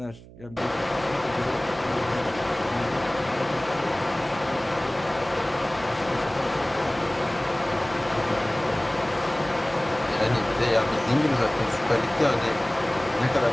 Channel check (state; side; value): noise; right; hum, 19 dB below the sound